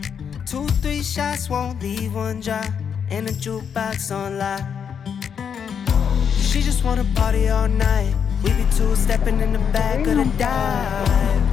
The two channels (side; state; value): right; quieter; 7.4 dB